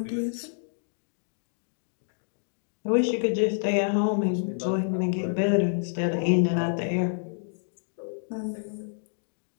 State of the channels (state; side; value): silent; right; digital silence